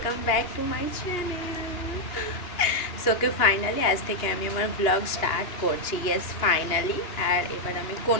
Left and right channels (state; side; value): late; right; 2.8 ms